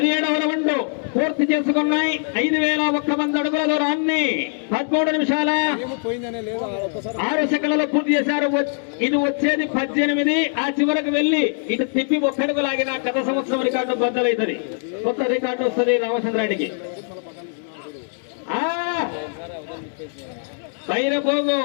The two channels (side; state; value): right; silent; 64 dB below the other